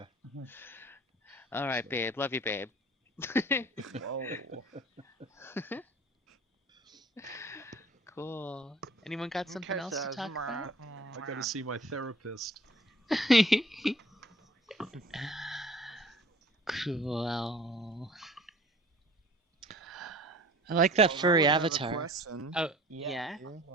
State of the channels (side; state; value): both; normal; correlation 0.48